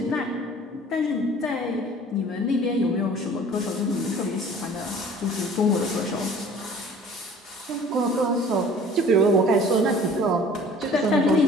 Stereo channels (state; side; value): normal; both; correlation 0.49